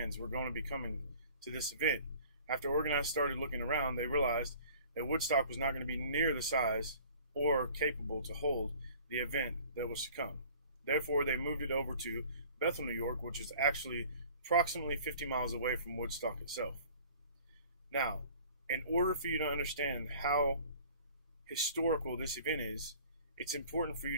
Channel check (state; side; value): inverted; both; correlation -0.49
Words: were going to be coming to this event, after organizers started looking around, they realized that Woodstock was not going to be near the size or capable to hold the event that was to come. Therefore, they moved it over to Bethel, New York, which is actually approximately 50 miles away from Woodstock itself. Now, in order for you to understand how historical this event is, it's important for you